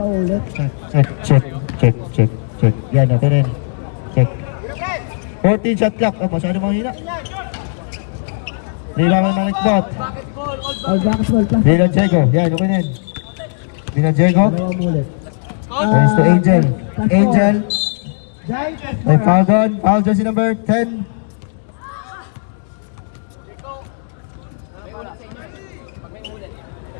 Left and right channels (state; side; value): silent; right; digital silence